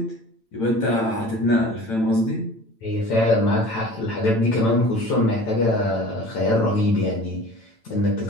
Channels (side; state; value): right; late; 8.9 ms